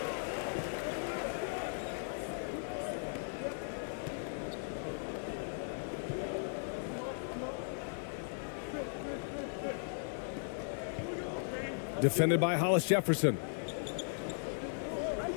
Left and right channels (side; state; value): right; silent; digital silence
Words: Defended by Hollis Jefferson.